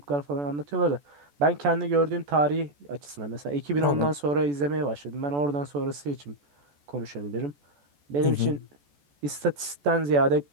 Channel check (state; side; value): late; left; 14 ms